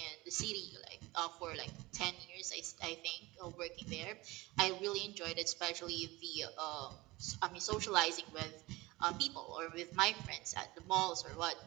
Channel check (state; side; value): quieter; left; 21.0 dB